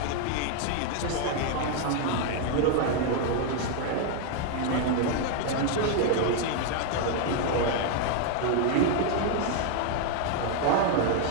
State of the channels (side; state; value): both; different; correlation 0.00